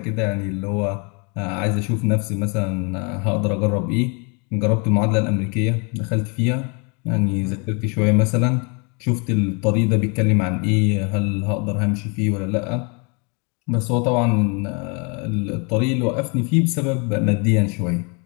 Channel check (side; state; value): right; quieter; 33.6 dB